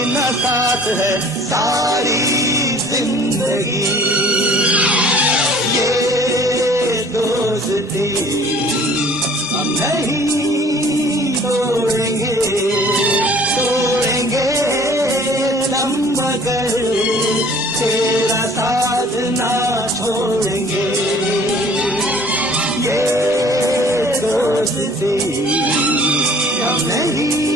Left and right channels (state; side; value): normal; both; correlation 0.52